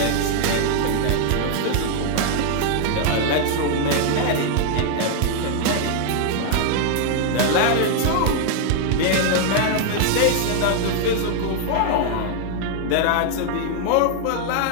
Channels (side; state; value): both; different; correlation 0.00